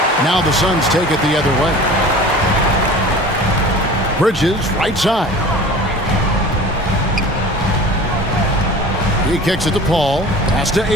Now the Suns take it the other way. Bridges, right side. He kicks it to Paul. Pass to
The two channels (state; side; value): normal; both; correlation 0.41